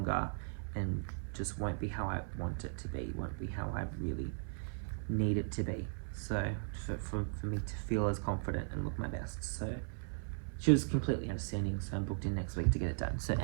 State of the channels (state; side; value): silent; left; 53 dB below the other